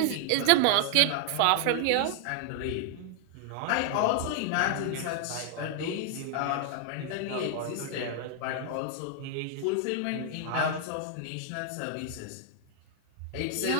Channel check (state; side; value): different; both; correlation 0.00